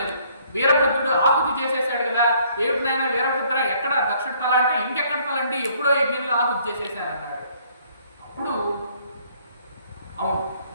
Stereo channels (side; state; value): both; inverted; correlation -0.63